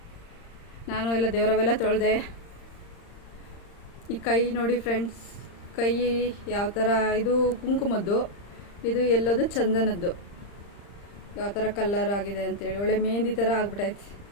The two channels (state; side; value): late; right; 35 ms